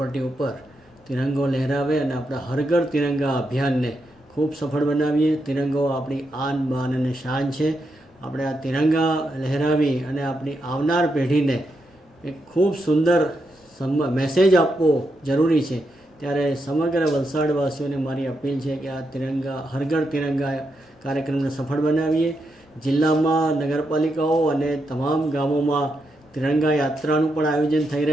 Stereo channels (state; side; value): normal; both; correlation 0.83